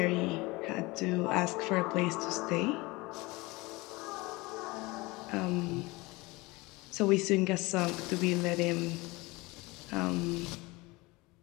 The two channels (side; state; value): right; quieter; 23.1 dB